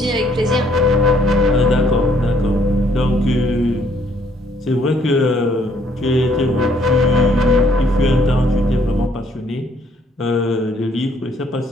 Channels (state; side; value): normal; both; correlation 0.66